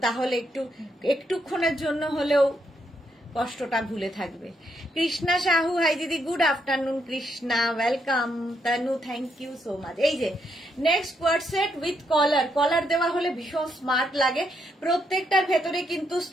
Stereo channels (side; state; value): both; normal; correlation 0.77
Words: তাহলে একটুক্ষণের জন্য হলেও কষ্টটা ভুলে থাকবে। কৃষ্ণা সাহু হাই দিদি, good afternoon Krishna, welcome. Tanu thank you so much. এই যে next coord set with collar, collar দেওয়া হলে ভীষণ স্মার্ট লাগে। প্রত্যেকটার ভেতরে কিন্তু